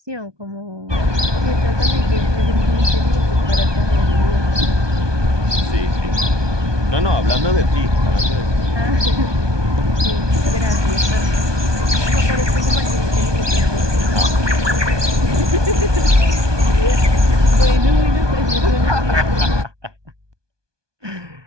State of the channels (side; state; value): left; late; 1.2 ms